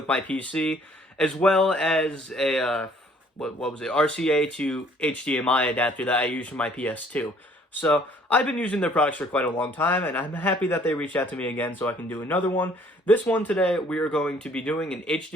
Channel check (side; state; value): both; normal; correlation 0.59